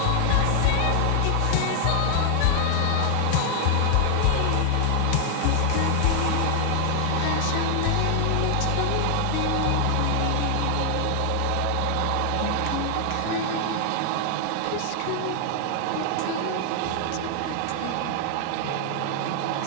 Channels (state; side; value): different; both; correlation 0.00